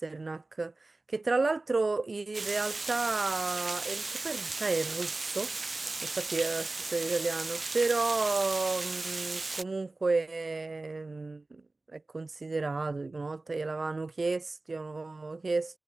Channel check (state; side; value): quieter; left; 3.2 dB